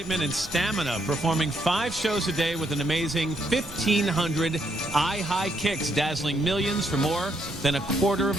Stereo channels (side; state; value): right; noise; hum, 22 dB below the sound